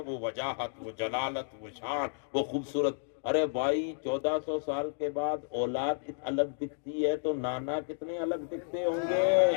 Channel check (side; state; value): right; silent; digital silence